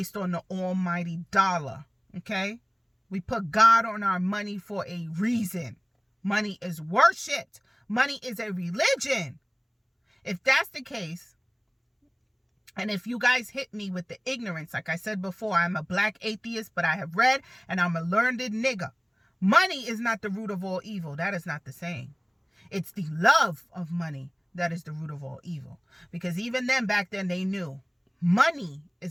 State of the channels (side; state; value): both; identical; correlation 1.00